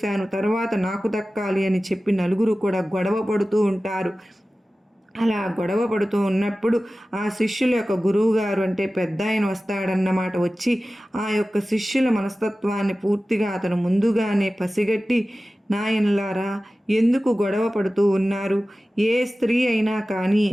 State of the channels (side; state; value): both; normal; correlation 0.96